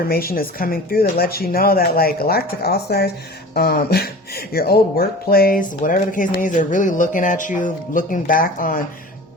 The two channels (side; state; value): both; normal; correlation 0.39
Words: is coming through that lets you know that like Galactic All-Stars, your old workplace, whatever the case may be, they're really looking at you, looking back on